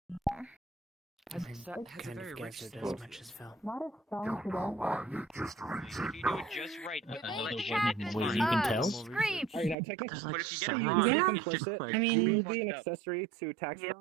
That's kind of gathered as much as fell. Not as strong today. If you do it just right, Wait, you can tell? Scream! Alright, now technically, But if you get it you wrong, can it's just complicit. like I mean- You fucked be an up. accessory to tax.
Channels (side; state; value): left; drops out; at 9.8 s